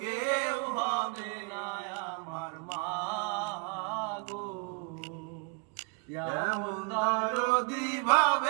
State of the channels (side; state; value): left; quieter; 32.8 dB